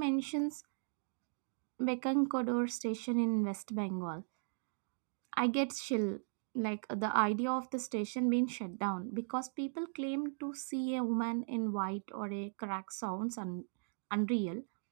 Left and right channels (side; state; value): left; silent; digital silence